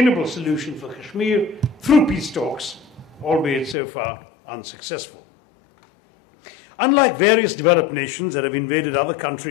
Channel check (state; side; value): drops out; right; at 3.8 s